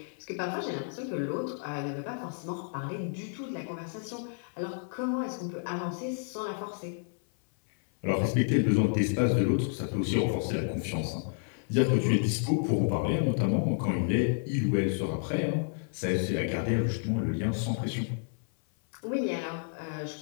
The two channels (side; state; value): right; silent; 58 dB below the other